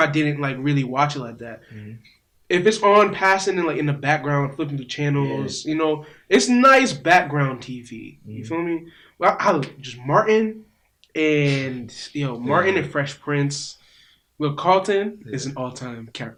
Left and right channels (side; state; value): both; identical; correlation 1.00